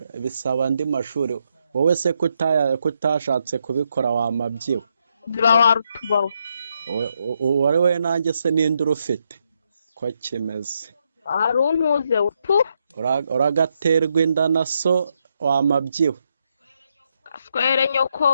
bisaba andi mashuri. Wowe se kutashatse kubikora wamabyiwe. Ziba warutubawe. Wari we nanjye se ninde urufite ko kimeze? Aruntuze utu. Uragaterwa inda na so wamabyiwe. Aswere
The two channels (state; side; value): inverted; both; correlation -0.79